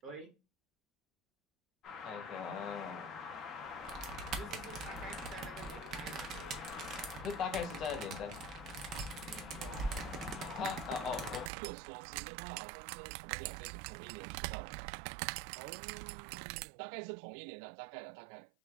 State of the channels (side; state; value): left; drops out; at 11.5 s